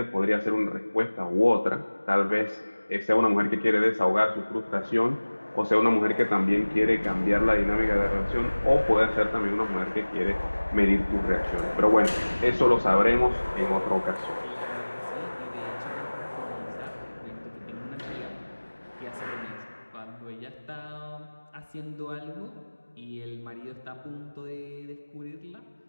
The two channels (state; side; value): inverted; both; correlation -1.00